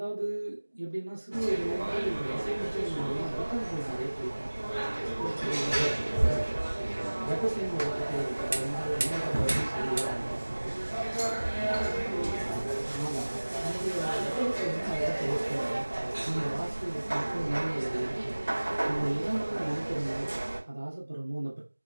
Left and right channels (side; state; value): both; inverted; correlation -1.00